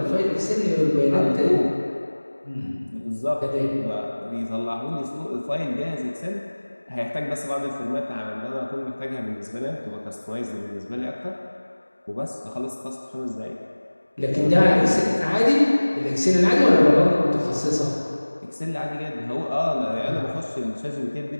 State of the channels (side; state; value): both; inverted; correlation -1.00